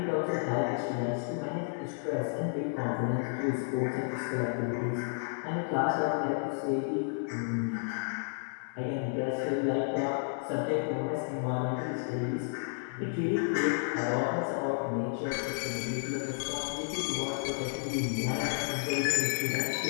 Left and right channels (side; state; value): right; silent; digital silence